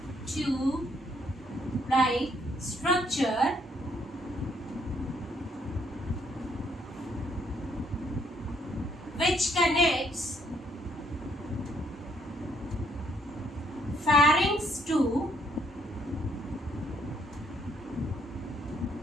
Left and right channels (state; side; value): normal; both; correlation 0.69